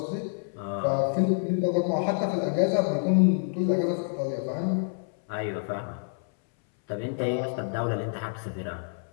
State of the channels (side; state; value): right; silent; 60 dB below the other